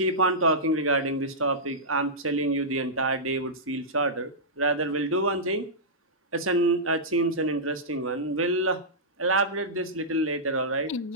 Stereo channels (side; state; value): both; normal; correlation -0.13